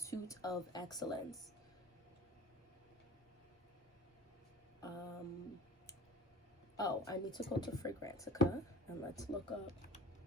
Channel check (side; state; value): both; normal; correlation 0.41